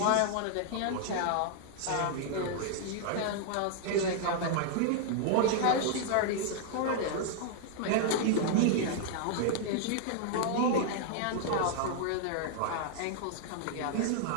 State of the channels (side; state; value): both; different; correlation -0.01